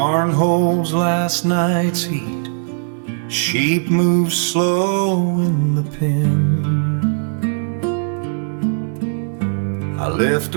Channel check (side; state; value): left; silent; 65 dB below the other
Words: holds last night's heat, sheep move slow in the pen. I lift